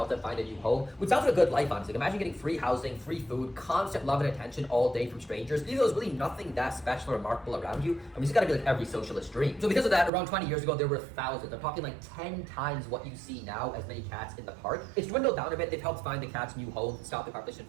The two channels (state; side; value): drops out; left; at 10.1 s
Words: them find a new home, which sounds like a good life, honestly. Imagine getting free housing, free food, constant love and attention all day from strangers. Even though there's really nothing that special or remarkable around you, I mean, it's gotta be like every socialist dream. So because of that, around 20 years ago, there were thousands. I'm talking like 10 times what you see now as many cats in the park. It's dwindled down a bit. They've helped find the cats new homes, stop the population